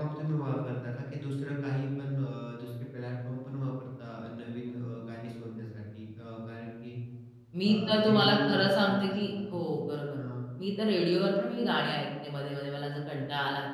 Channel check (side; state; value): both; identical; correlation 1.00